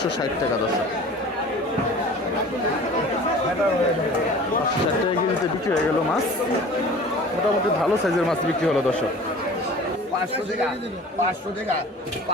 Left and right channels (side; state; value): both; normal; correlation 0.43